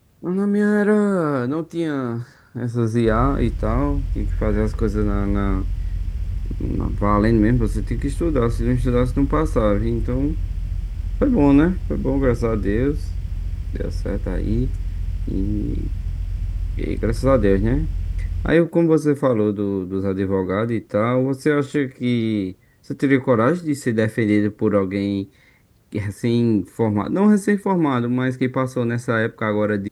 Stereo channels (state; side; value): identical; both; correlation 1.00